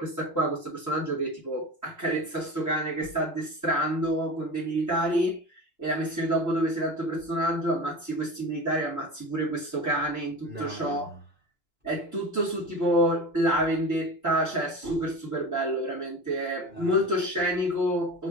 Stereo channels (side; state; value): right; late; 2.9 ms